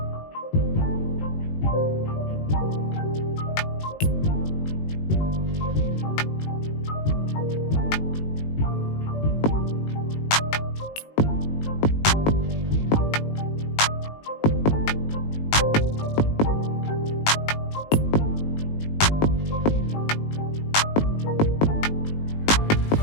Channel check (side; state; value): right; late; 19 ms